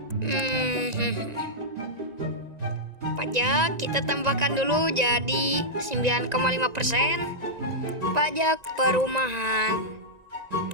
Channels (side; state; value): left; late; 1.9 ms